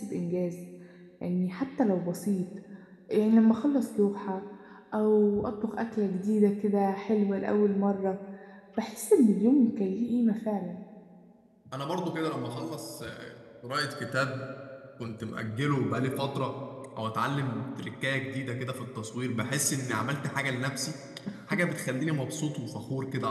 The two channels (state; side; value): identical; both; correlation 1.00